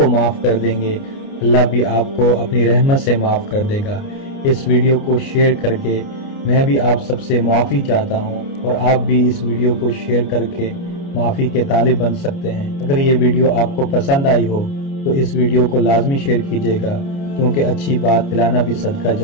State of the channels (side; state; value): right; late; 29 ms